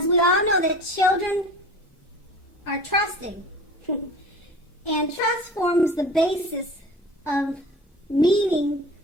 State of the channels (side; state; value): both; normal; correlation 0.39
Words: we all know that children are trusting. And trust forms the basis of meaning